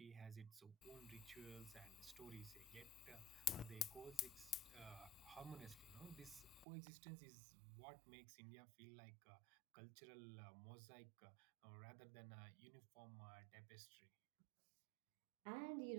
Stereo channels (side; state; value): left; drops out; at 6.7 s